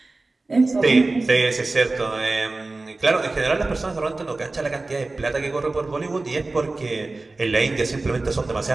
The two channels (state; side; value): quieter; left; 3.3 dB